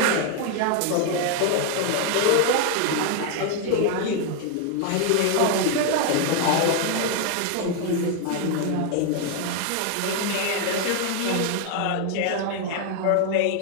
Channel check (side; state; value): both; different; correlation 0.01